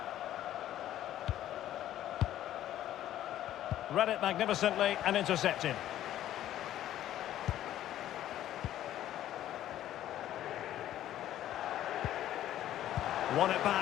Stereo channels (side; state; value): right; quieter; 12.5 dB